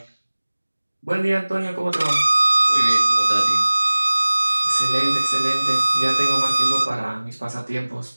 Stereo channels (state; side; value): inverted; both; correlation -1.00